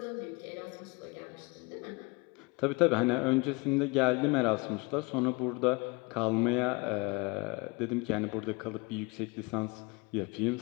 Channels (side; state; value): right; quieter; 26.7 dB